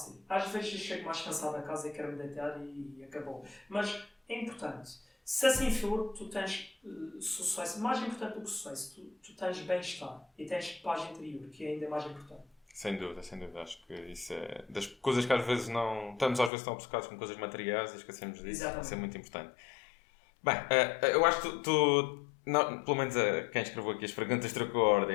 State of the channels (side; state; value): right; drops out; at 16.5 s